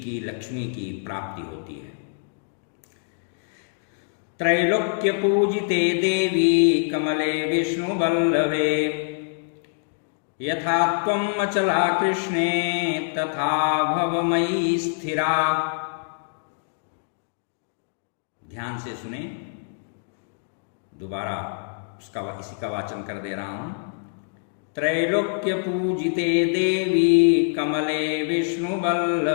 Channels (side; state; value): right; silent; digital silence